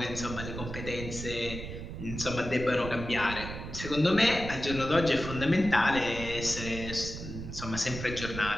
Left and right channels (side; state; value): right; noise; rumble, 8 dB below the sound